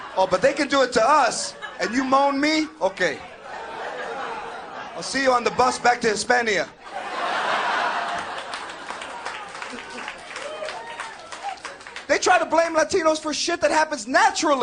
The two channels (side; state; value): both; identical; correlation 1.00